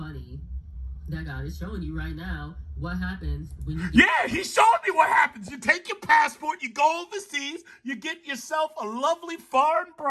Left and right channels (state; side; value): identical; both; correlation 1.00